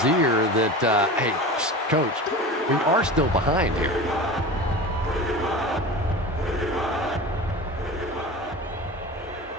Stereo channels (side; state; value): both; normal; correlation 0.32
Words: ear that, hey, coach, we are still behind here.